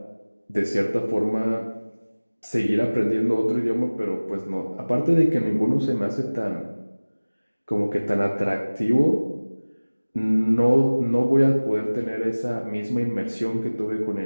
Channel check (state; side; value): inverted; both; correlation -1.00